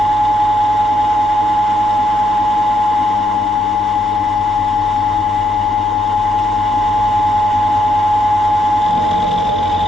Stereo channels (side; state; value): both; normal; correlation 0.75